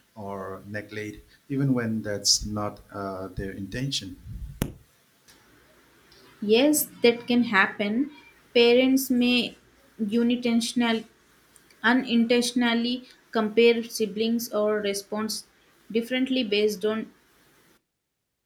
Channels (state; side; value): identical; both; correlation 1.00